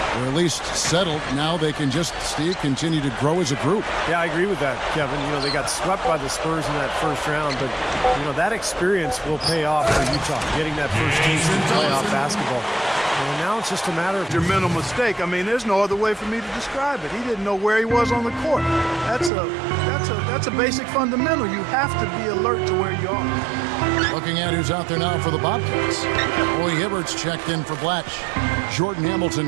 at least settled. Now they can just, Steve, continue to grow as a group. Yeah, I agree with that, Kevin. You know, they got swept by the Spurs in that first round, but, you know, that experience will pay off for Utah, getting that first taste in playoff basketball. And now it's just a matter of your mental mistake. I mean, there's no other way for me to describe it. He didn't know where he was on the court. That's a basic fundamental. You have to be alert to where you are. Looking at who's out there now for the Bobcats. Roy Hibbert's checked in for Blatch. Jordan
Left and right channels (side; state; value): left; drops out; at 19.3 s